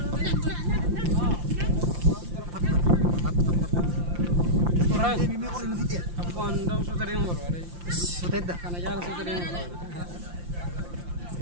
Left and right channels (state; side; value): late; left; 5.8 ms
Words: Aku andam sudah yang baru ada. Sutedda. Karena jalan sudah yang baru.